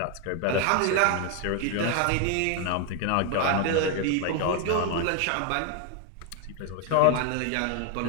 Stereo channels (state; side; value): different; both; correlation 0.01